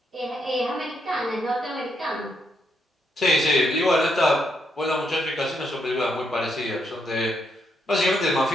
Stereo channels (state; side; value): normal; both; correlation 0.78